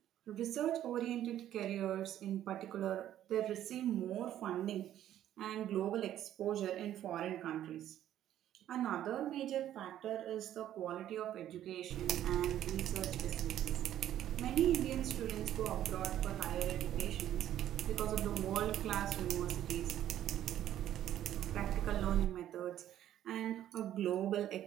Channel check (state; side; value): quieter; left; 11.8 dB